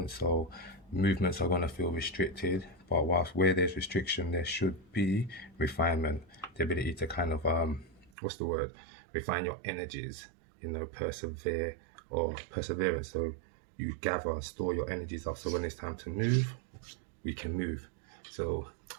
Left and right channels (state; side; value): drops out; left; at 8.1 s